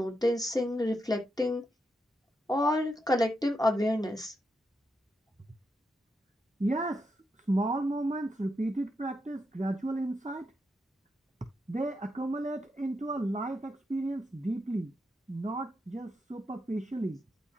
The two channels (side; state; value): both; normal; correlation 0.84